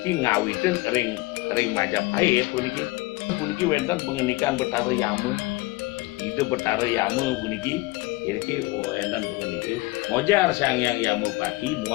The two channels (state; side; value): quieter; right; 21.7 dB